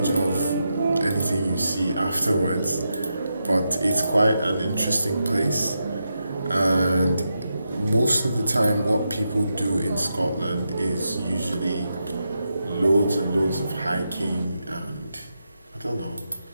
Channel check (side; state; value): both; inverted; correlation -0.86